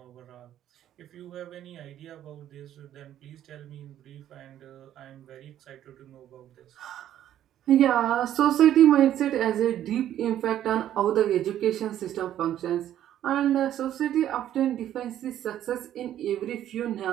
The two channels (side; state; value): left; quieter; 11.5 dB